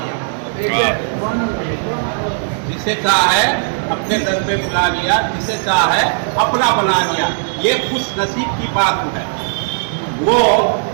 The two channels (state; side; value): silent; left; digital silence